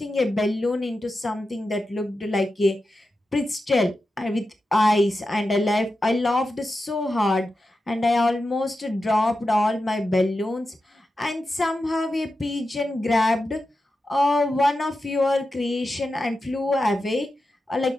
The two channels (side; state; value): both; normal; correlation 0.91